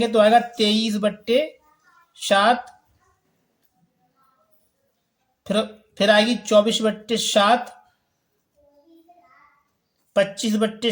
तो आएगा 23/7। फिर आएगी 24/7,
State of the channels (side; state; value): both; identical; correlation 1.00